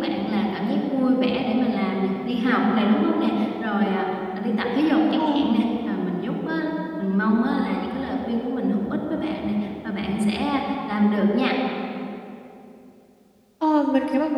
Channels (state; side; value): identical; both; correlation 1.00